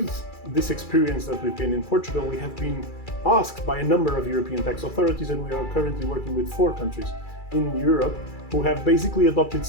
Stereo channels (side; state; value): right; late; 2.3 ms